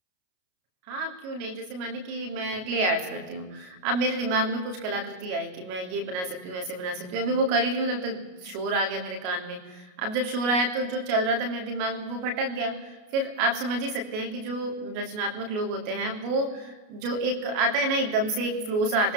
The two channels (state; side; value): late; left; 33 ms